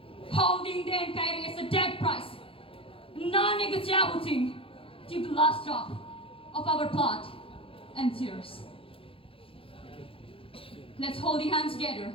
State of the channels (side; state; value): right; late; 0.27 ms